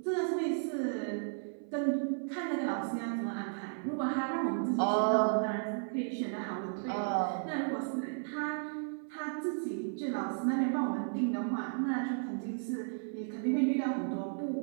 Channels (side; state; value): left; silent; 55 dB below the other